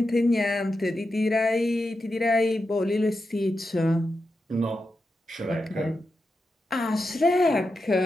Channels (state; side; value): normal; both; correlation 0.88